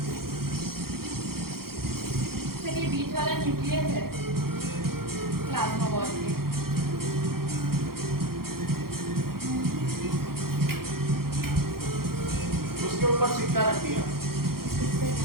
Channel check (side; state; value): left; late; 0.93 ms